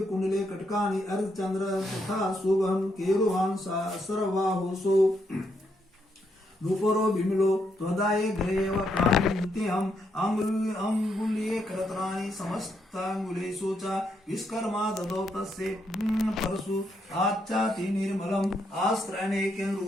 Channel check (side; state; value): both; normal; correlation 0.77